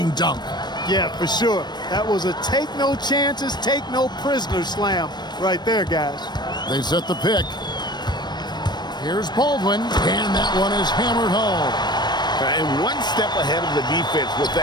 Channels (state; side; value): late; right; 0.21 ms